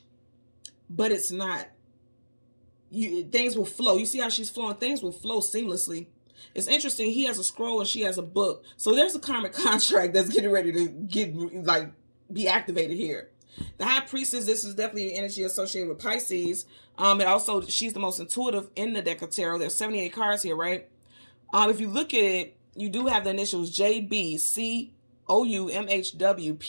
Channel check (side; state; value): both; inverted; correlation -1.00